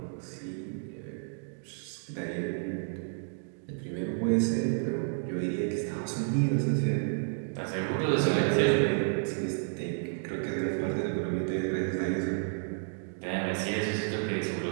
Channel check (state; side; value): silent; left; digital silence